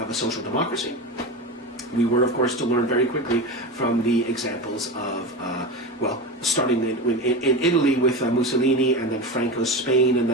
social democracy. We were, of course, to learn very quickly from the examples of, starting in Italy with Mussolini, and then Franco's Spain, and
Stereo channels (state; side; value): normal; both; correlation 0.24